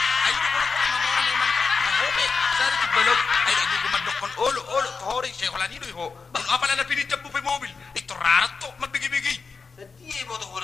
Balog ay nagugumadok kon olo tohori siya wala nido ho. Apa na pinijam mo pa mobil? Ito rarat to magbigi-bigi. Di mo to ko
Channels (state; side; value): quieter; right; 4.9 dB